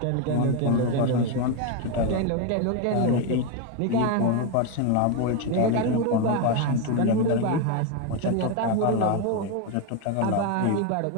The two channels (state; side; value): different; both; correlation 0.02